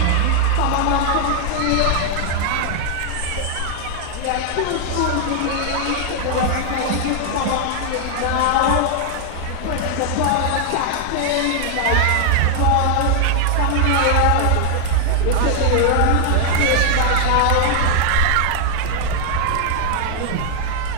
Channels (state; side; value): different; both; correlation 0.00